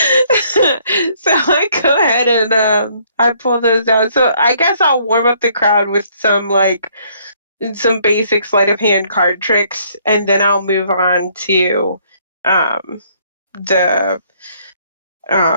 So I go ahead and I pull those out. So I guess I'll warm up the crowd with some like some basic sleight of hand card tricks, and then I'll move on to the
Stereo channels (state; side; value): inverted; both; correlation -0.65